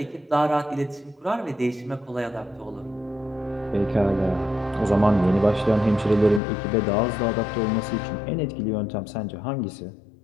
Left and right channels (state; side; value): drops out; right; at 6.4 s